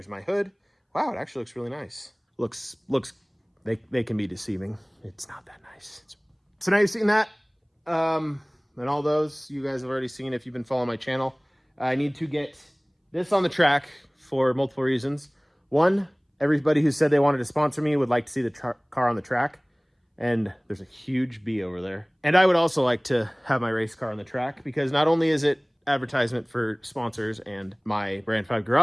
my hood. Wow, it actually looks really nice. Looks, they can be deceiving. It's not that nice. So now you've seen that. And all those you guys have already seen if you've been following my channel. I need to get this on the track for multiple reasons. One, everybody who said they wanted to sponsor me would like to see the car on the track. And there's a huge B over there. And I would also like to have my race car on the track, because not only is it advertisement for sponsors and my Brand 5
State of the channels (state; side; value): identical; both; correlation 1.00